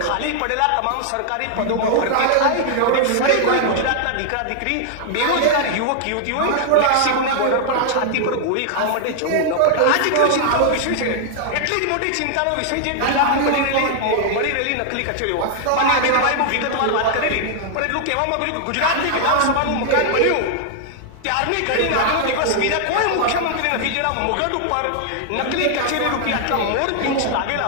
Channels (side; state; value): both; different; correlation 0.00